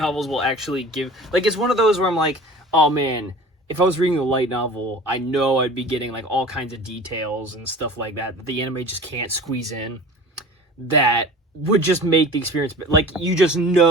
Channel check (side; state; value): both; normal; correlation 0.40